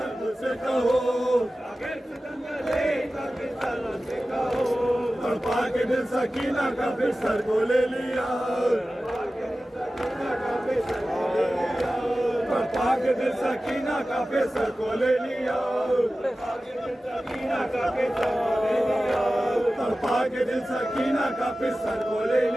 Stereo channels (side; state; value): both; normal; correlation 0.95